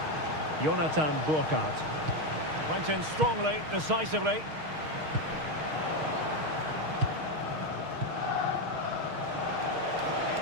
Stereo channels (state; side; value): late; left; 6.4 ms